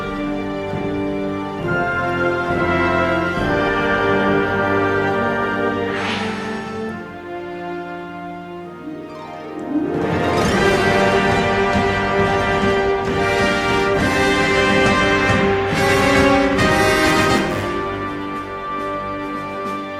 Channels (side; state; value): both; identical; correlation 1.00